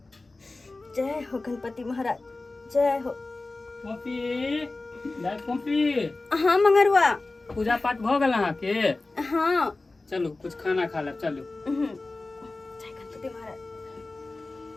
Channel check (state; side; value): quieter; right; 3.3 dB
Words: जय हो गणपति महाराज जय हो Poppy हाँ मंगरुआ पूजा पाठ भ गेल अहाँ के हाँ चलू कुछ खाना खा लेब चलू जय गणपति महाराज